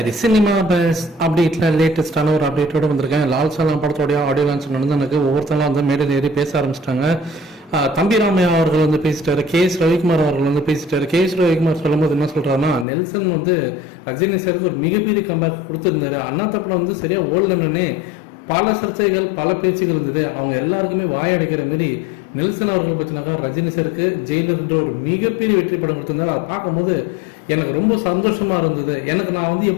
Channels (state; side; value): drops out; right; at 12.9 s